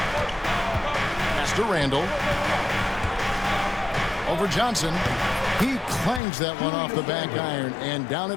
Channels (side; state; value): right; drops out; at 6.2 s